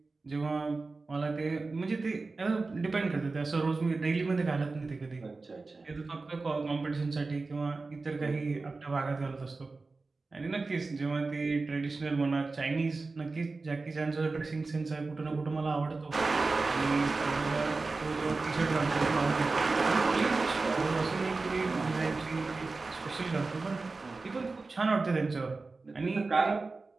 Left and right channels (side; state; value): left; quieter; 3.8 dB